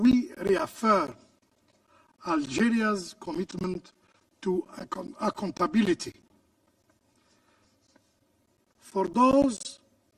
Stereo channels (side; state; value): both; identical; correlation 1.00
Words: reaffirm Algeria's commitment to accountability. For those